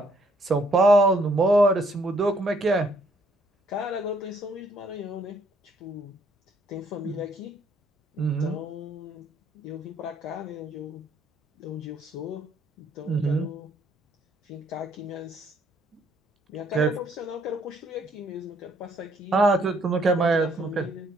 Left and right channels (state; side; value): normal; both; correlation 0.67